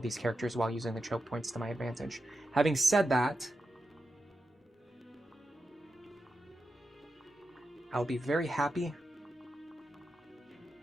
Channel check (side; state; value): both; normal; correlation 0.89